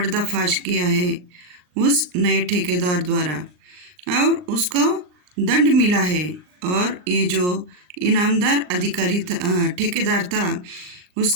किया है उस नए ठेकेदार द्वारा, और उसको दंड मिला है। और ये जो इनामदार अधिकारी ठेकेदार था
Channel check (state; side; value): late; left; 39 ms